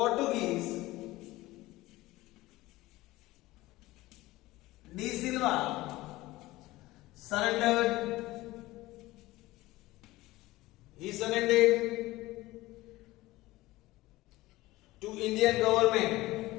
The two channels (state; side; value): quieter; right; 18.5 dB